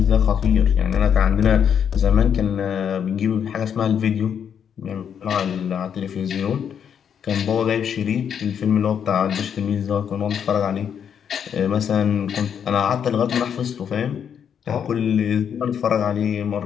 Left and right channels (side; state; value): right; quieter; 8.0 dB